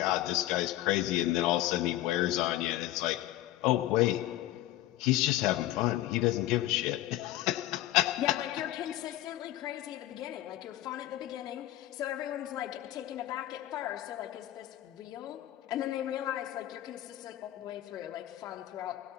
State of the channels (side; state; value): right; quieter; 15.0 dB